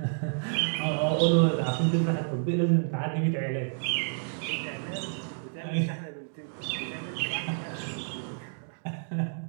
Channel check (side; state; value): left; silent; digital silence